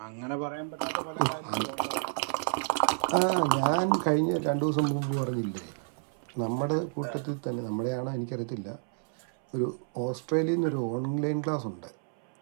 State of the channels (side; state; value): left; silent; 58 dB below the other